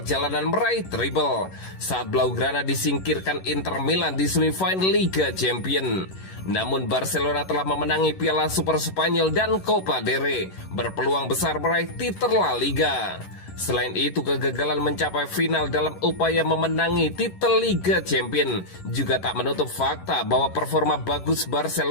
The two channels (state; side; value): late; right; 11 ms